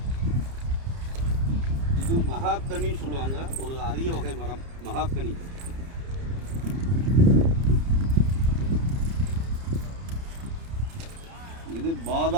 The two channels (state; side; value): late; left; 30 ms